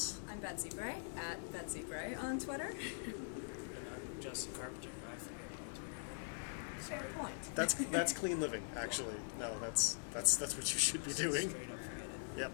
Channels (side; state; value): right; silent; digital silence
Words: I'm Betsy Bray at Betsy Bray on Twitter. And I'm Justin Carpenter. I forget on Twitter. Fair point. That's clean living, actually. No, that's what you should be doing. Straight up forget it. Yep,